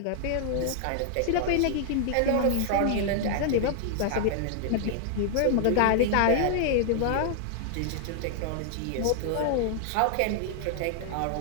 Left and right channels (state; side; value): different; both; correlation 0.00